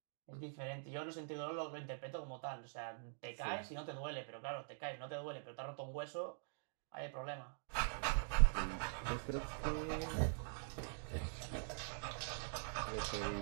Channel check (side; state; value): left; silent; digital silence